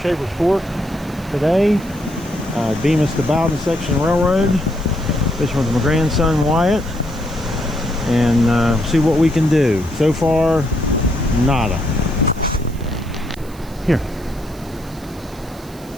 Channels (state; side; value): noise; right; hiss, 23 dB below the sound